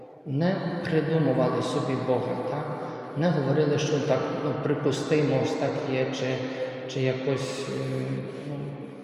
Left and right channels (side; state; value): both; identical; correlation 1.00